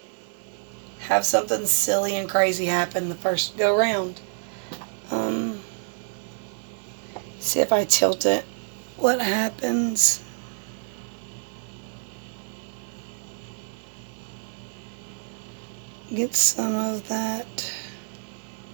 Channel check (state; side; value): silent; left; digital silence